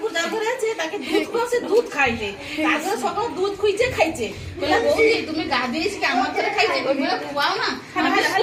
যার ঘরে আছে তাকে দুধ খাওয়াছে, দুধ খাইলে তারপরে সকাল দুধ খুঁজছে খাইছে। তুমি গা দিয়েছি আমার ঘরে খাইছে, তুমি খুয়াও না আমার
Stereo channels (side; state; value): both; identical; correlation 1.00